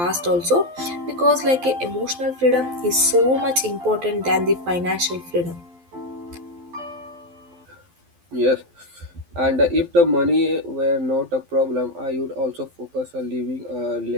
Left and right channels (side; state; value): left; late; 12 ms